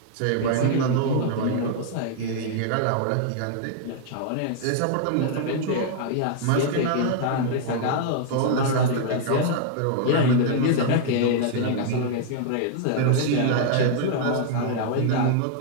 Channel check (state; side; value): different; both; correlation 0.00